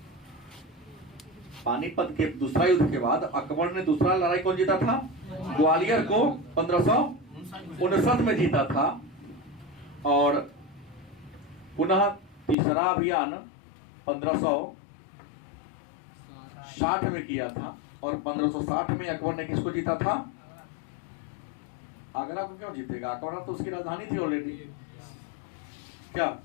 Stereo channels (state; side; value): drops out; right; at 12.6 s